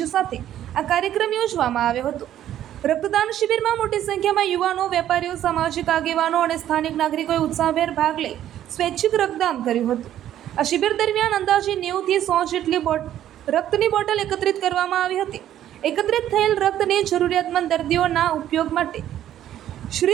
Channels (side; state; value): left; quieter; 11.6 dB